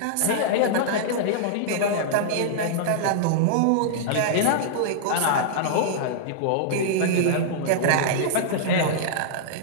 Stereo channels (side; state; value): both; different; correlation -0.02